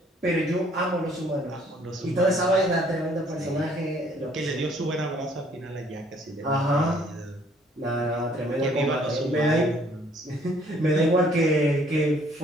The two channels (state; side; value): normal; both; correlation 0.61